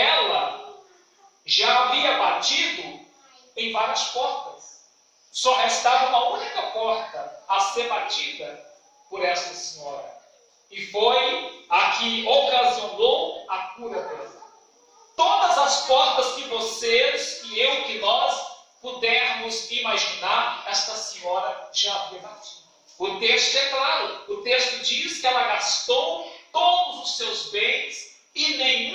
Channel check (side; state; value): both; identical; correlation 1.00